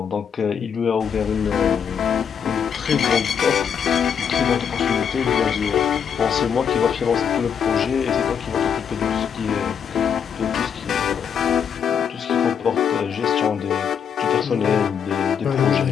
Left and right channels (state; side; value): quieter; right; 7.5 dB